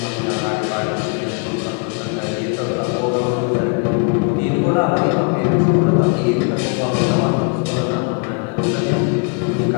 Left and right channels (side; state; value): right; quieter; 34.7 dB